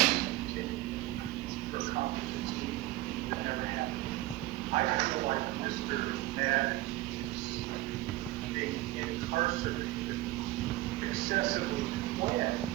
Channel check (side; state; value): left; quieter; 17.5 dB